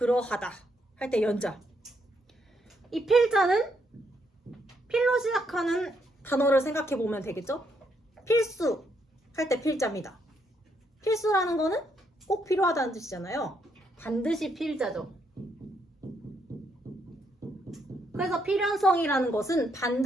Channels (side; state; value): both; normal; correlation 0.75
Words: 할 때 연자. 이 필자는 필로 시작하는 단어를 생각해 보면 되겠죠? 필수 할 때 필자입니다. 필수라는 거는 꼭 필요하다는 뜻이잖아요. 반드시 필자죠. 그래서 필연성이라는 것은